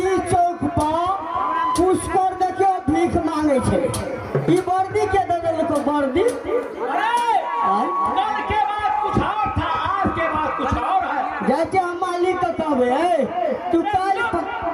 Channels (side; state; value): both; identical; correlation 1.00